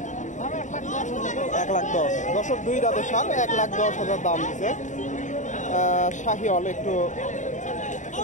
1,10,000। দর্শক 2 দাঁতের সার 1,10,000 দাম দিছে। শাহিওয়াল, একটু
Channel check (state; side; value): late; right; 0.36 ms